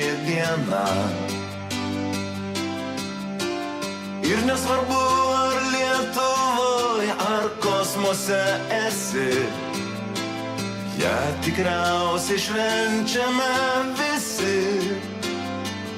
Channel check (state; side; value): identical; both; correlation 1.00